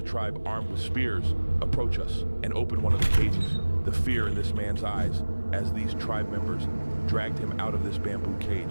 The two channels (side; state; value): both; inverted; correlation -1.00